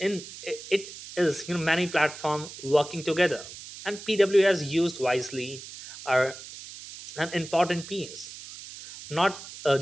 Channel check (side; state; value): right; noise; hiss, 14 dB below the sound